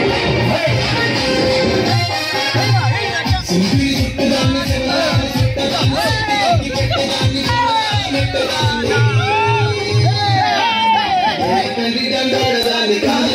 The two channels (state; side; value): identical; both; correlation 1.00